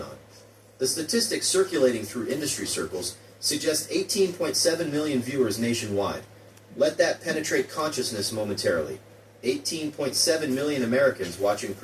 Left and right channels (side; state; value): both; identical; correlation 1.00